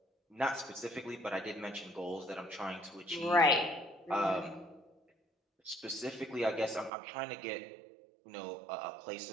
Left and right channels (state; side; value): drops out; left; at 6.9 s